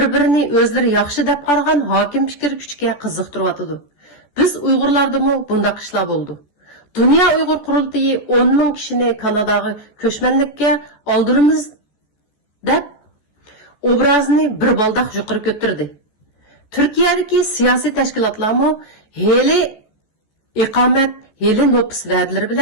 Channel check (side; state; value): right; late; 14 ms